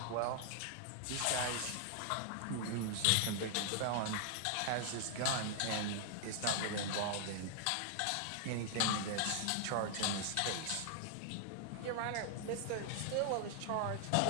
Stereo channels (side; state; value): both; different; correlation 0.00